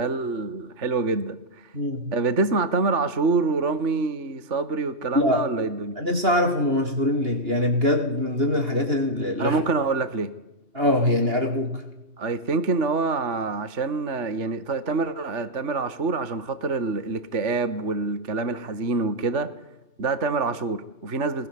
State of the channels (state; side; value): late; left; 2.8 ms